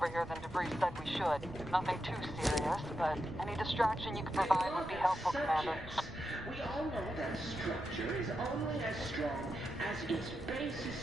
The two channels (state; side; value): noise; right; rumble, 14 dB below the sound